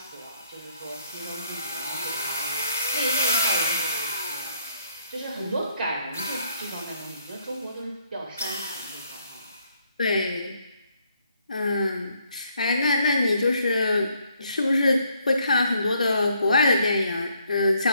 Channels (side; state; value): both; inverted; correlation -0.70